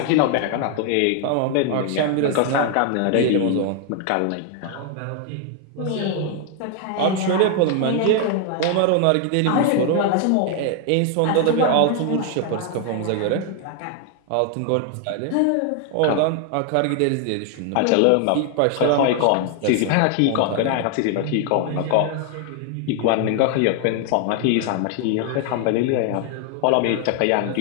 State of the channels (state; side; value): different; both; correlation 0.00